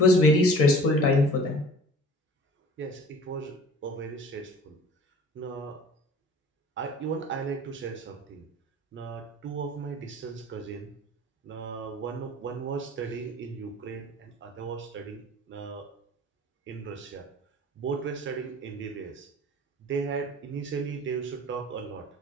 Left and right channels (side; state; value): both; normal; correlation 0.46